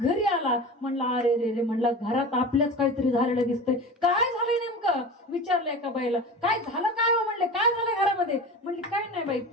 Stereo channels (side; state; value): both; normal; correlation 0.32